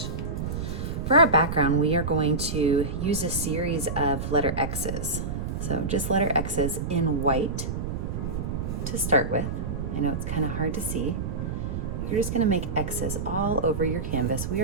For our background, we are going to use a series of letter X's. So just letter X's in white to start with. I know it's kind of hard to see. You're just going to make X's all over your canvas. We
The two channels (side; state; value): right; noise; rumble, 4 dB below the sound